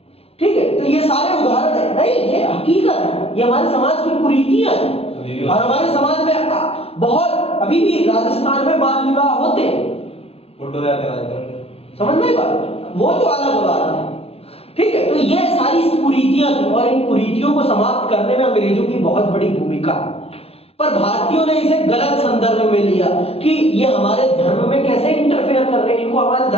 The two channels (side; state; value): right; late; 0.29 ms